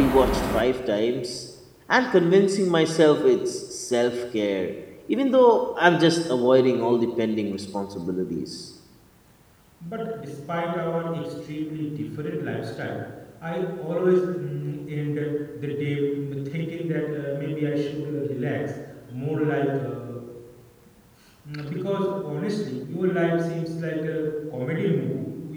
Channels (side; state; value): both; identical; correlation 1.00